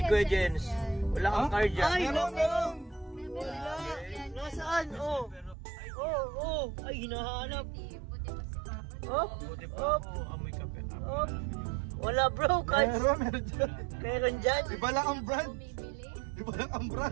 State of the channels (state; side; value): drops out; left; at 5.6 s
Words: kuya Jens, wala kang carjack. Ay, Meron. wala. Nasaan? Oh. Ay, hinahanap. Op. Buti pa ako, amoy kape. Op. Wala bro, kahit Meron dyan. meron dyan. Iba lang ang brand. Iba lang ang